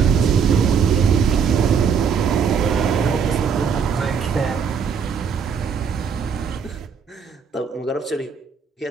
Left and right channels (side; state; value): left; quieter; 6.5 dB